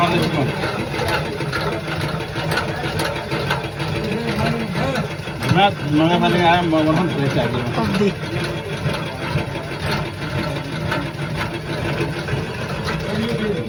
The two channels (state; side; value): identical; both; correlation 1.00